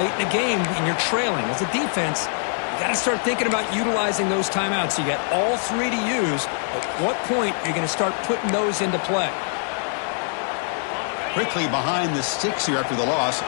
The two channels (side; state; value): right; silent; 58 dB below the other